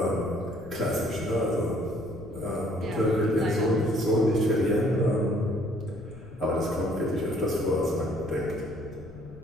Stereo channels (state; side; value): noise; left; rumble, 17 dB below the sound